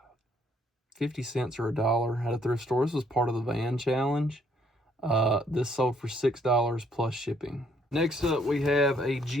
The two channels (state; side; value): normal; both; correlation 0.67